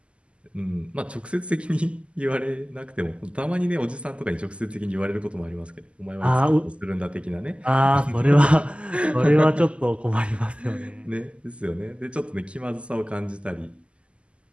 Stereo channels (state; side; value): late; left; 0.055 ms